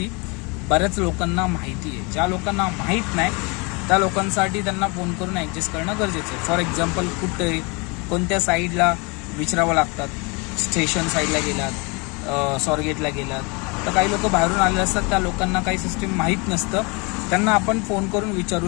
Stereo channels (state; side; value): quieter; right; 30.0 dB